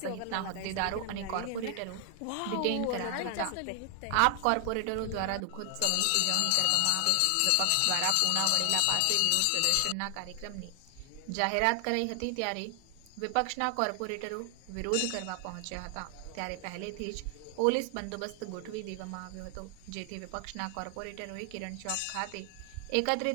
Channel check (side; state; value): both; different; correlation 0.00